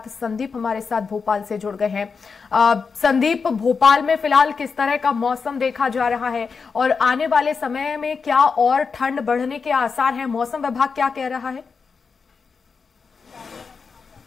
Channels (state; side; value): quieter; right; 5.3 dB